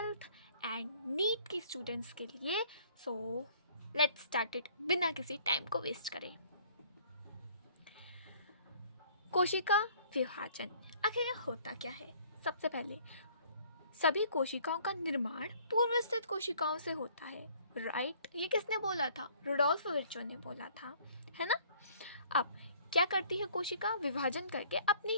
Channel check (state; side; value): inverted; both; correlation -0.57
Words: एंड नीट की स्टूडेंट्स के लिए। सो लेट्स स्टार्ट इट बिना किसी टाइम को वेस्ट करे। कोशिका विभाजन आखिर यह होता क्या है? सबसे पहले सभी कोशिकाओं का निर्माण पूर्व स्थित कोशिकाओं से होता है, राइट? ये किसने बोला था? रुडोल्फ विर्चो ने बोला था, है ना? अब क्या करती है कोशिका? विभाजन करके अपनी